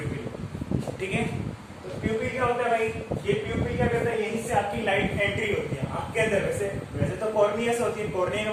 ठीक है. तो प्यूपिल क्या होता है भाई? ये प्यूपिल क्या करता है? यहीं से आपकी लाइट एंट्री होती है आंख के अंदर. वैसे तो कॉर्निया से होती है, कॉर्निया के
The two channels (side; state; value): both; identical; correlation 1.00